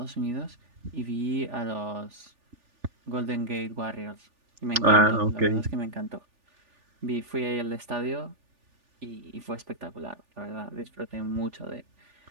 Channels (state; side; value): late; left; 3.4 ms